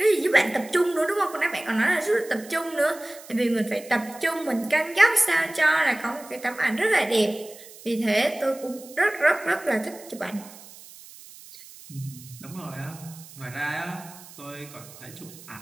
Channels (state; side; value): noise; right; hiss, 19 dB below the sound